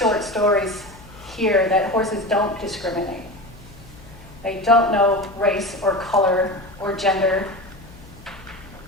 stories, hear that horses don't discriminate. They don't know race or color or gender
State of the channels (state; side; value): noise; left; hum, 20 dB below the sound